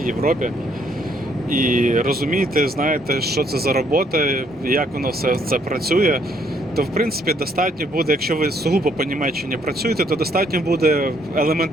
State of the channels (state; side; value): normal; both; correlation 0.68